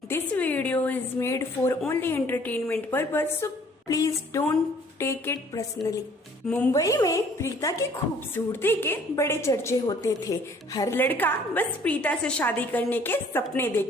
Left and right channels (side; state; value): both; normal; correlation 0.57